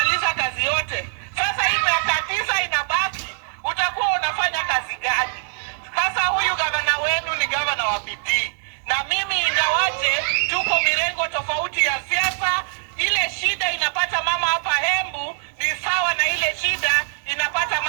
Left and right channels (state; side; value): silent; left; 59 dB below the other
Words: kazi yote, sasa hii miaka 9 inabaki, utakuwa unafanya kazi gani? Sasa huyu gavana wenu ni gavana wa bidii. Na mimi ingawaje tuko mirengo tofauti ya siasa, ile shida inapata mama hapa Embu ni sawa na ile shida inapata